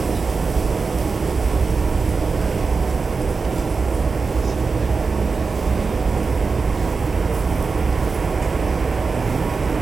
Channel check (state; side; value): quieter; left; 4.6 dB